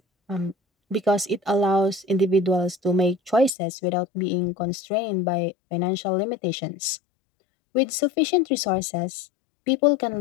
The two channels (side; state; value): right; drops out; at 3.6 s